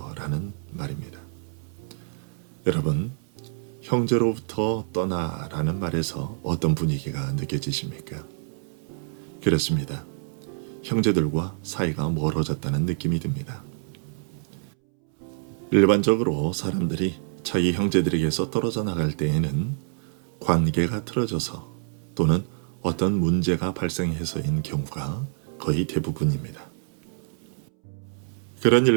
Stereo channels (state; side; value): silent; left; 61 dB below the other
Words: 라는 말입니다. 여러분, 형제로부터 떠나라는 말에서 어떤 분위기가 느껴지십니까? 그렇습니다. 형제들과 사이가 멀어졌다는 느낌이 듭니다. 일반적으로 사람들이 자기 형제들에게서 떨어져 나갈 때에는 관계가 틀어져서 또는 어떤 문제가 발생해서인 경우가 거의 대부분입니다. 그런